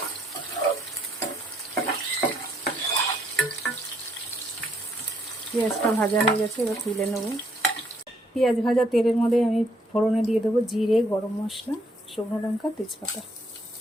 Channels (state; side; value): normal; both; correlation 0.70